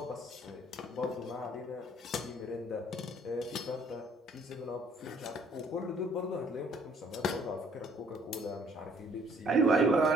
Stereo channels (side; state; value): both; normal; correlation 0.61